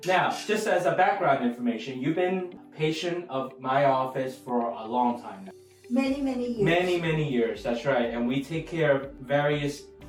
now, just as a background information, you've been a patient of my office for a long time now. Many years. Many years, that's right. And we take care of various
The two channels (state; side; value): identical; both; correlation 1.00